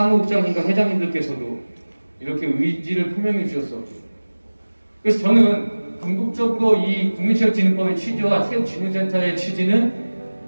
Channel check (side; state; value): both; inverted; correlation -1.00